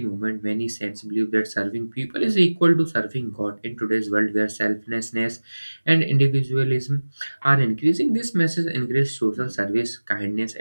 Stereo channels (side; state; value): both; inverted; correlation -1.00